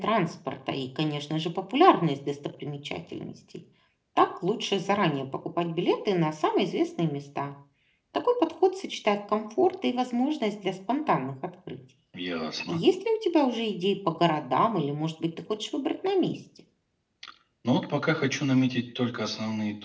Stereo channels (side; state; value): both; identical; correlation 1.00